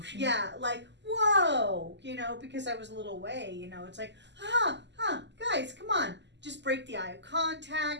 yeah, like, whoa, because I was a little away, it's like, guys, come on. Just break the eye of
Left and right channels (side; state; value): left; late; 0.51 ms